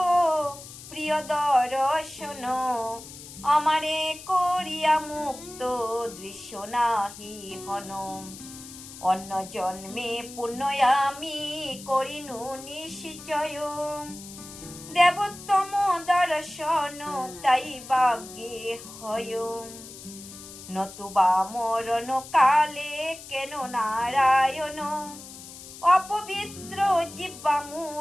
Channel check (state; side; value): noise; left; hiss, 15 dB below the sound